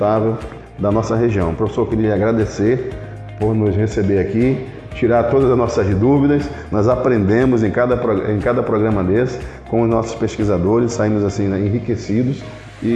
da nossa região. Professor, eu queria agradecer por nos receber aqui, tirar todas as nossas dúvidas. Nós aprendemos em cada programa desse com os nossos pesquisadores, saímos assim, né, enriquecidos.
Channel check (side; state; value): both; identical; correlation 1.00